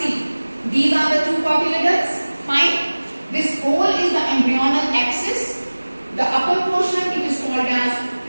These are the two cotyledons. Fine. This whole is the embryonal axis. The upper portion it is called as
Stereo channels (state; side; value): inverted; both; correlation -1.00